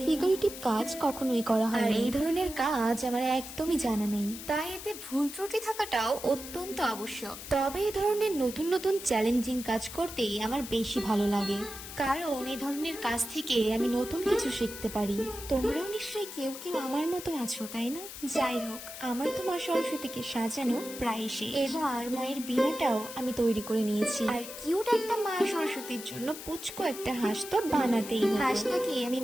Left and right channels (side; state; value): left; noise; hiss, 11 dB below the sound